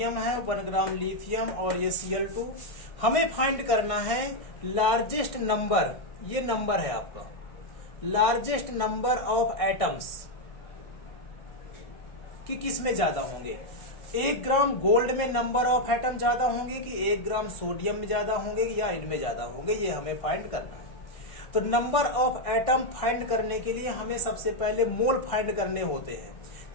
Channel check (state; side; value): late; right; 1.6 ms